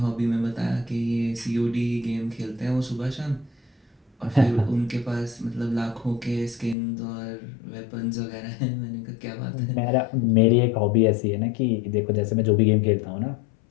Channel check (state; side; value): drops out; right; at 6.8 s